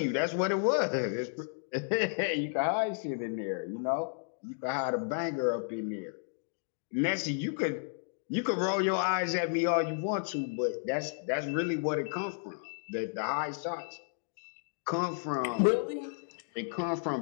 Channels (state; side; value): silent; right; digital silence